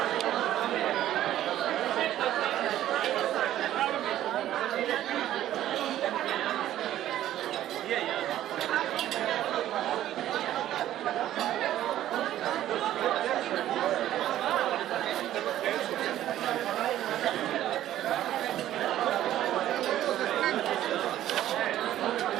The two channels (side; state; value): left; quieter; 12.8 dB